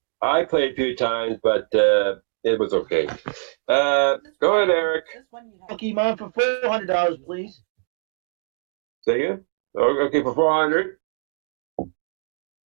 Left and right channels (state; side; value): silent; left; digital silence